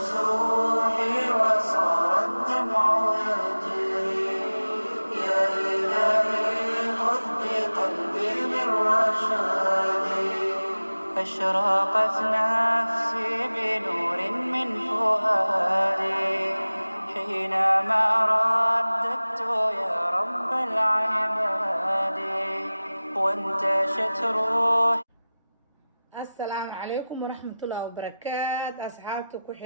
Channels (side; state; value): both; inverted; correlation -0.97